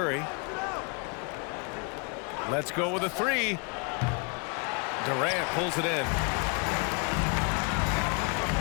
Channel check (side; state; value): right; quieter; 34.4 dB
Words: Let's go with a three. Durant pulls it in.